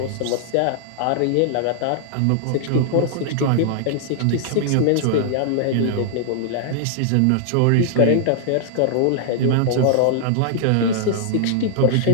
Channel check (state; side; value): different; both; correlation -0.01